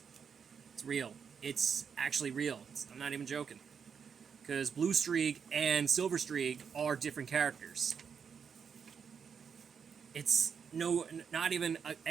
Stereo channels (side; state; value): left; quieter; 6.7 dB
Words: real. It's actually real. I'm not even joking. Because Blue Streak and Silver Streak are different characters. It's not even an